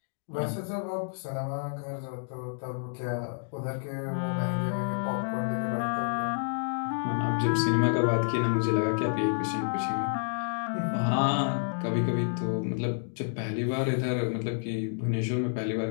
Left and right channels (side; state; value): right; silent; digital silence